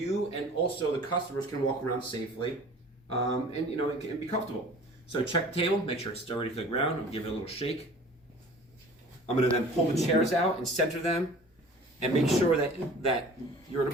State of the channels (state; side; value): normal; both; correlation 0.45